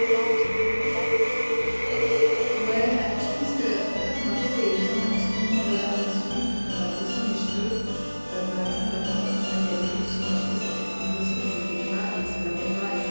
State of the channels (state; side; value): inverted; both; correlation -1.00